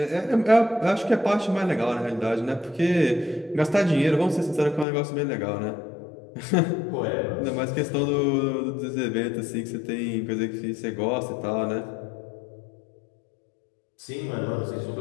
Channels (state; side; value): drops out; right; at 4.9 s